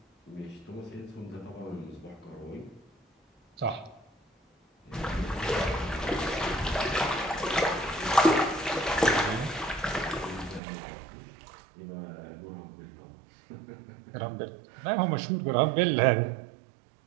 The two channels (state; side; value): drops out; left; at 10.6 s